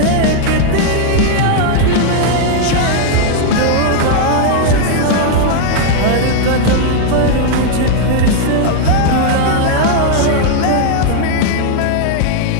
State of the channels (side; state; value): both; different; correlation 0.00